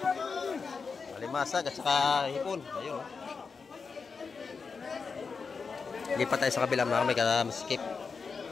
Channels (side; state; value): right; quieter; 5.1 dB